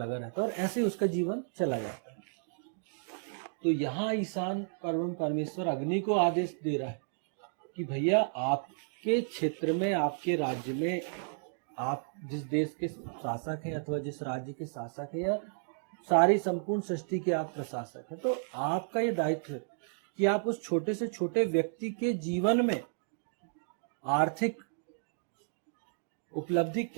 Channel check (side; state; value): left; silent; digital silence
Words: रहता है, और ऐसे उसका जीवन चला जाता है। तो यहाँ ईशान परमेश्वर अग्नि को आदेश दे रहा है कि भैया, आपके क्षेत्र में, आपके राज्य में, आप जिस देश के शासक हैं अथवा जिस राज्य के शासक हैं, या सारी संपूर्ण सृष्टि के आप प्रशासक हैं, तो आपका ये दायित्व है कि आप उस छोटे से छोटे व्यक्ति के जीवन में आर्थिक उपलब्धि